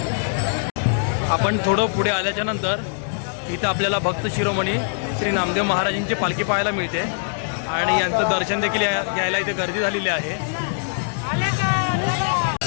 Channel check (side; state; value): right; silent; digital silence